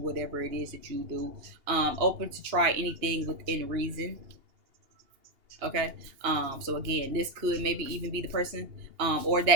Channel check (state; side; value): late; left; 2.8 ms